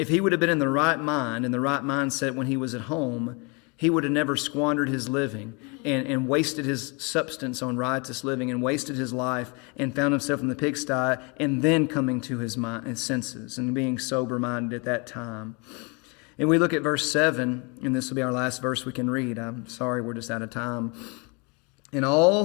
he would have been in the right mind, in the right mindset when he was at home, he would have never squandered his living and wasted his substance on riotous living and wasted his life and found himself in the pigsty and then coming to his senses and being sober-minded at that time. And we look at verse 7, and this will be our last verse we can read. I'm sorry, we're just out of time. In all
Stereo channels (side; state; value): right; quieter; 31.5 dB